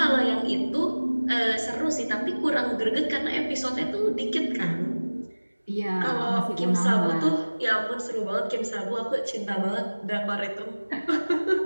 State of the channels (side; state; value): both; inverted; correlation -1.00